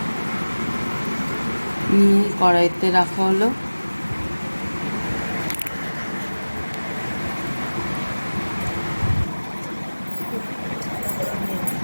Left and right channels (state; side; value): inverted; both; correlation -1.00